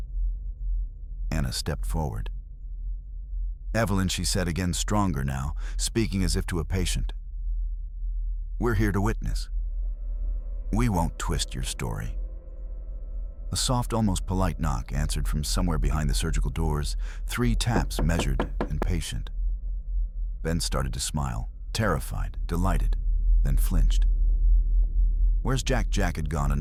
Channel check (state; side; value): identical; both; correlation 1.00